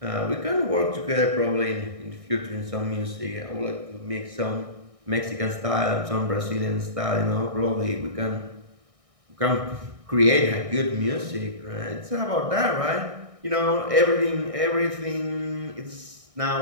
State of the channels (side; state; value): left; late; 1.6 ms